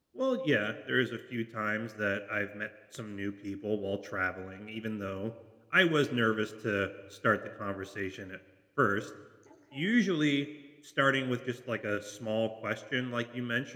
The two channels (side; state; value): both; identical; correlation 1.00